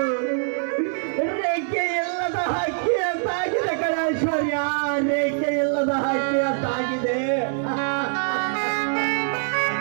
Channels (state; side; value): silent; left; digital silence